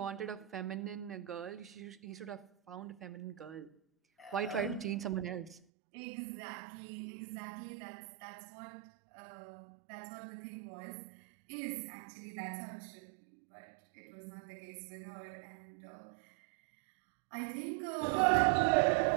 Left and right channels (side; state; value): left; drops out; at 5.6 s